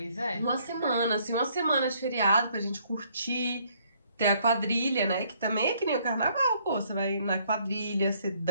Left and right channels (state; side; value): inverted; both; correlation -0.66